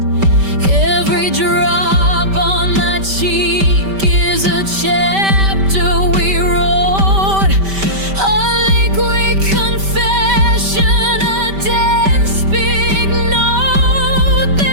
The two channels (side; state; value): left; late; 5.1 ms